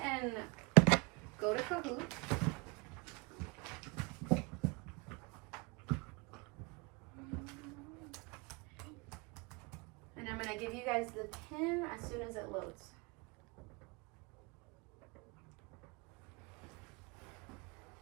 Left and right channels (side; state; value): left; quieter; 26.5 dB